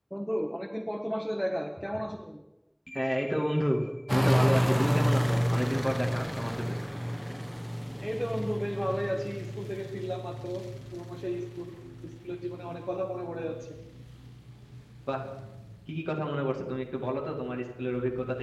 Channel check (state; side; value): identical; both; correlation 1.00